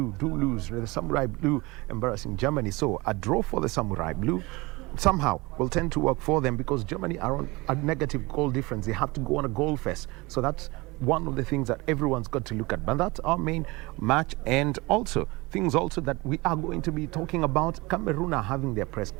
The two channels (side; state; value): left; quieter; 23.4 dB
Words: do lose. The Samurai Blue embarrassing Germany. So a draw for the Samurai Blue somehow will tend to work for them, because Germany are on a negative goal difference. They have to go on a goal fest. So that's one of the things that everyone's got to look at. But that's our main match. And also things also that we are going to be talking about. Cameroon are having their press